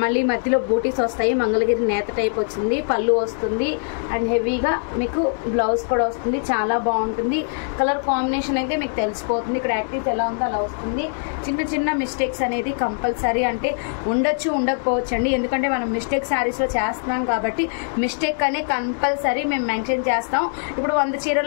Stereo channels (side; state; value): right; silent; digital silence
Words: మధ్యలో బూటీస్ వస్తాయి. మంగళగిరి నేత టైప్ వచ్చింది. పళ్ళు వస్తుంది అండ్ హెవీగా మీకు బ్లౌజ్ కూడా వస్తుంది. చాలా బాగుంటుంది. కలర్ కాంబినేషన్ అయితే మీకు తెలిసిపోతుంది. ఇక్కడ యాక్టివ్స్ ఎలా ఉందో అలా వస్తుంది. చిన్న చిన్న మిస్టేక్స్ అనేది కంపల్సరీ, అంటే ఉండొచ్చు ఉండకపోవచ్చు అండి. ఎందుకంటే మనం మిస్టేక్ శారీస్లో చేస్తున్నాం కాబట్టి మిస్టేక్ అనే కంపల్సరీ మేము మెన్షన్ చేస్తాం. ఇప్పుడు 100